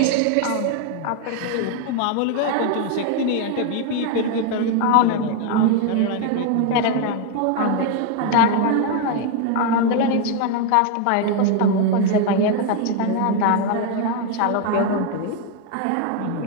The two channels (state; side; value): different; both; correlation 0.00